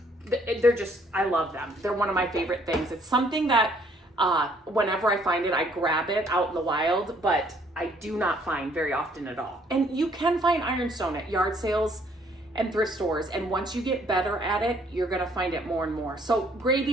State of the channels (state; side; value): normal; both; correlation 0.63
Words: they're just, I love them. They're one of my favorite things. It's something that whenever I find it, I grab it out in the wild, but I do not find very often at all. And you can find ironstone at yard sales and thrift stores, and once you get better at it, you're gonna find it more and more. So